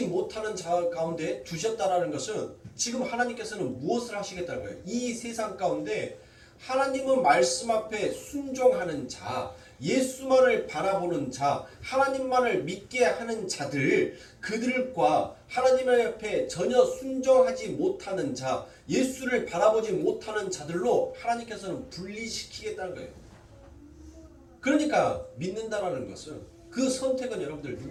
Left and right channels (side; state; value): both; identical; correlation 1.00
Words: 못하는 자 가운데 두셨다라는 것은 지금 하나님께서는 무엇을 하시겠다는 거예요? 이 세상 가운데 하나님의 말씀 앞에 순종하는 자, 예수만을 바라보는 자, 하나님만을 믿게 하는 자들, 그들과 하나님 앞에 전혀 순종하지 못하는 자, 예수를 바라보지 못하는 자들로 하나님께서는 분리시키겠다는 거예요. 그러니까 믿는다라는 것은 그 선택은 여러분들